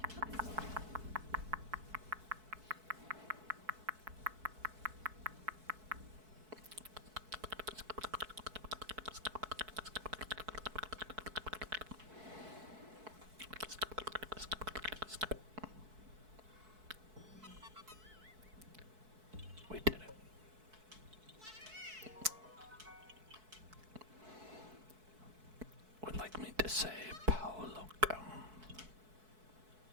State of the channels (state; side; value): late; left; 4.6 ms